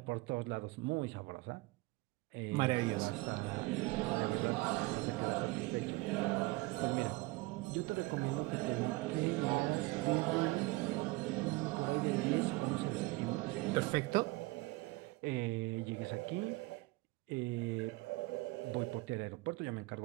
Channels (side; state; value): left; quieter; 22.5 dB